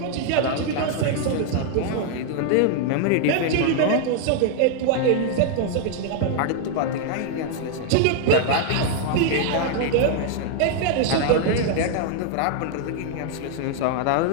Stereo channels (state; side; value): different; both; correlation 0.00